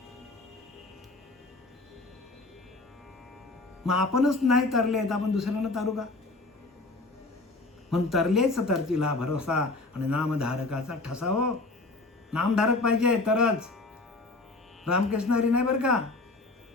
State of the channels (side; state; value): right; quieter; 3.3 dB